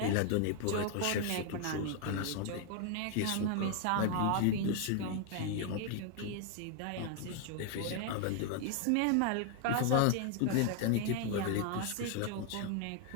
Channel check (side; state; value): both; different; correlation 0.00